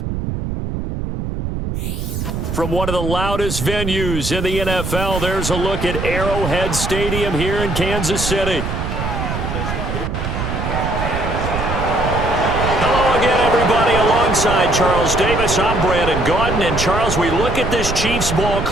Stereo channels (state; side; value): noise; right; rumble, 4 dB below the sound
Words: From one of the loudest venues in the NFL, there's a look at Arrowhead Stadium here in Kansas City. Hello again, everybody. Alongside Charles Davis, I'm Brandon Gaudin. And Charles, we look at this Chiefs ball